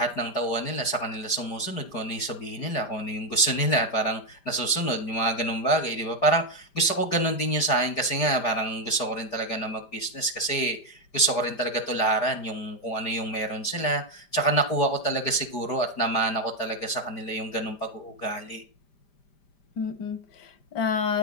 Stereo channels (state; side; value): late; right; 5.0 ms